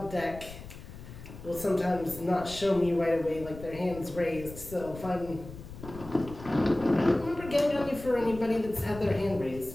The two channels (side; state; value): left; noise; rumble, 14 dB below the sound